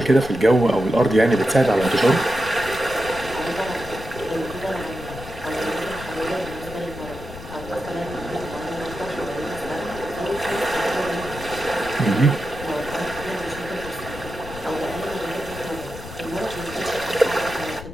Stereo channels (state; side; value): noise; left; rumble, 13 dB below the sound